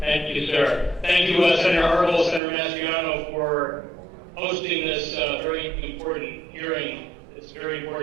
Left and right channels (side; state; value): left; drops out; at 2.4 s